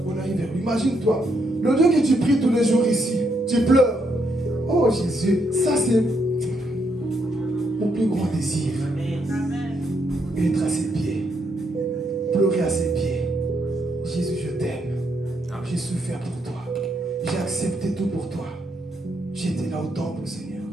arrive vers lui. Imagine-toi, le Dieu que tu pries tous les jours ici, tu pleures. Oh Jésus, ça c'est mon plus grand désir. Être à ses pieds, pleurer à ses pieds. Jésus, je t'aime. J'ai souffert pour toi. J'ai accepté tout pour toi. J'étais là au temple, Seigneur.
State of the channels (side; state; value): both; normal; correlation 0.77